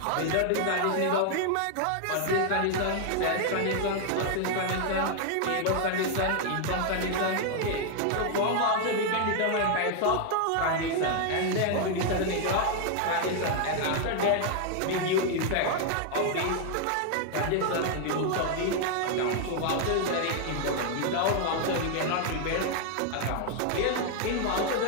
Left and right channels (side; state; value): both; different; correlation 0.00